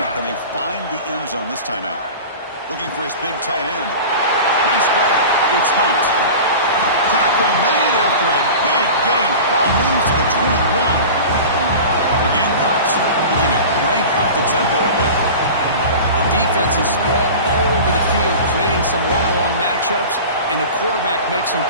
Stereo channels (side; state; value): both; inverted; correlation -0.35